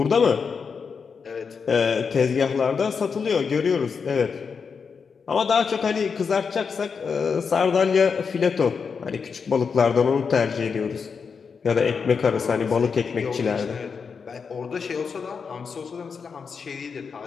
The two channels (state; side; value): quieter; right; 5.7 dB